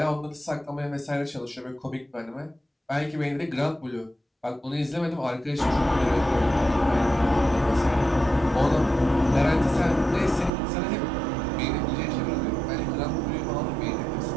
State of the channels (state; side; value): drops out; left; at 10.5 s